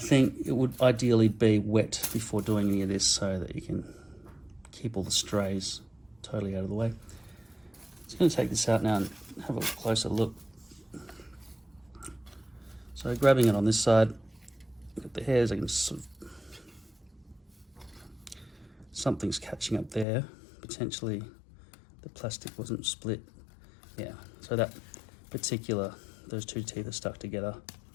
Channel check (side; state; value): right; drops out; at 20.1 s